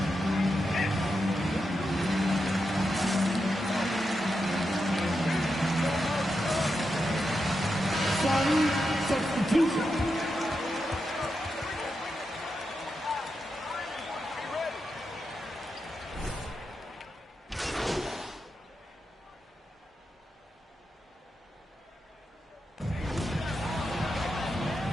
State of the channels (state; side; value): normal; both; correlation 0.87